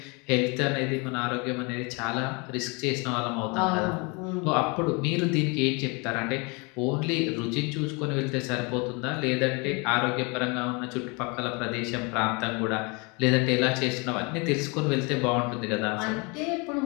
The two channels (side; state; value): right; quieter; 30.0 dB